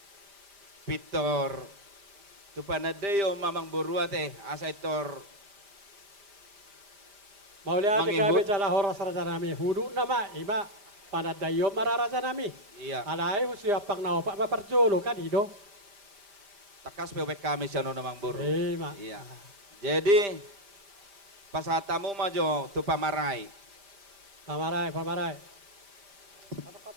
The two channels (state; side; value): late; left; 5.0 ms